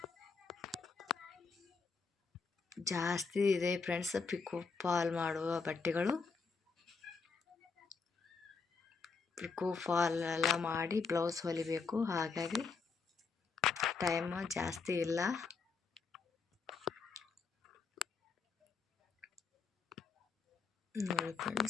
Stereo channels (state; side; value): quieter; right; 5.0 dB